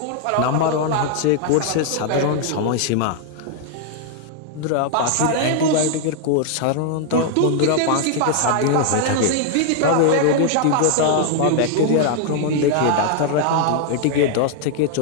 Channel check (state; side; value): different; both; correlation 0.00